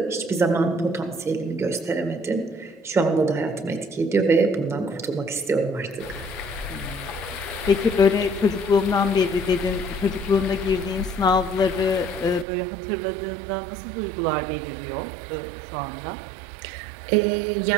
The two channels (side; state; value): left; drops out; at 12.5 s